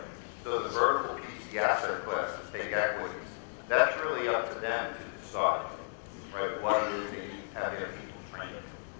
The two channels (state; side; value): silent; right; digital silence